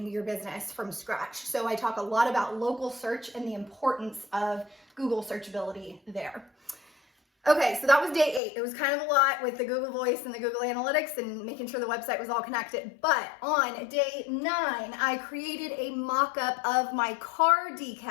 your business from scratch. So I talk a lot about local search and the importance of Google searchability there. Okay, so that was day 8. It was kind of a lot with the Google Voice and the Google Analytics and making sure the website was all connected. But on day 9, I created a mock-up of my car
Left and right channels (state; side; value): drops out; right; at 8.4 s